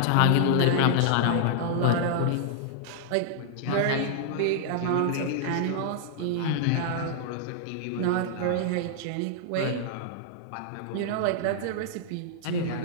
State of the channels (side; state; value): both; different; correlation -0.01